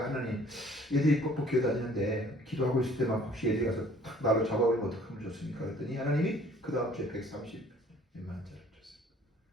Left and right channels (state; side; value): normal; both; correlation 0.55